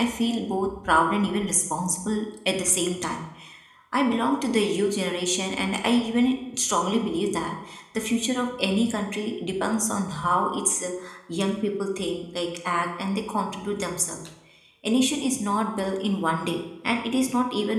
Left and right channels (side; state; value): both; identical; correlation 1.00